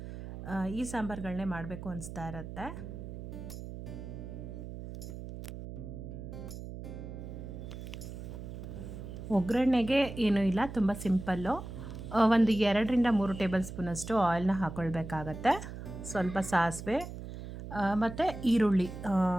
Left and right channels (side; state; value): right; noise; hum, 10 dB below the sound